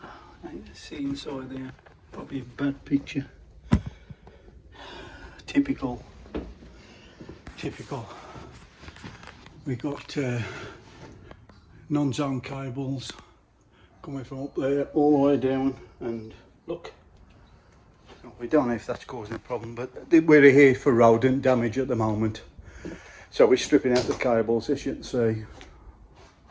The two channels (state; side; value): identical; both; correlation 1.00